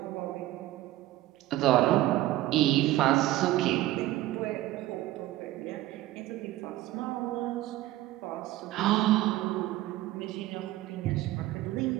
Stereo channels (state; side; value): quieter; left; 15.8 dB